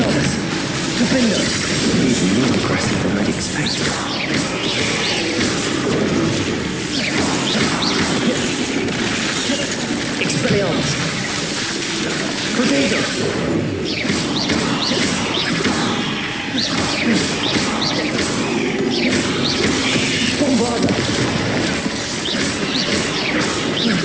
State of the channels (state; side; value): noise; right; rumble, 25 dB below the sound